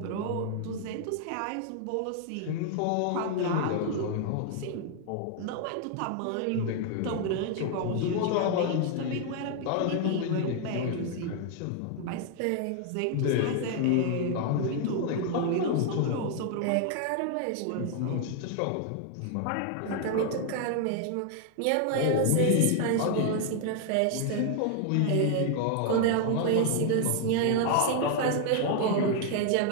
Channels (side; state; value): both; different; correlation 0.00